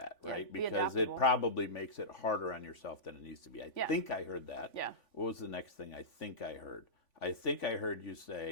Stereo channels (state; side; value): late; right; 3.5 ms